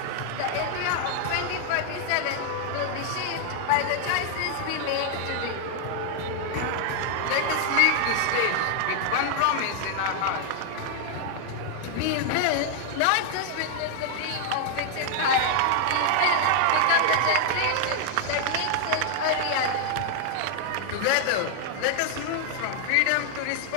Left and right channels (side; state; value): both; different; correlation 0.00